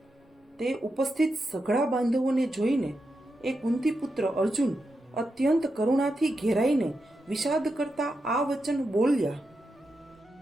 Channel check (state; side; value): normal; both; correlation 0.87